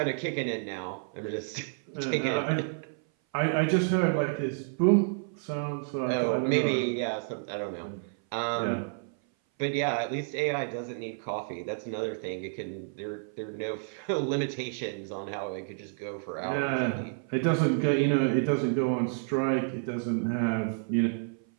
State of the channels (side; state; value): left; silent; 57 dB below the other